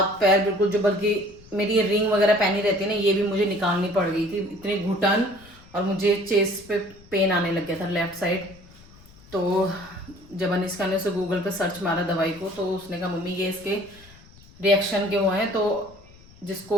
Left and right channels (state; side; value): noise; left; rumble, 23 dB below the sound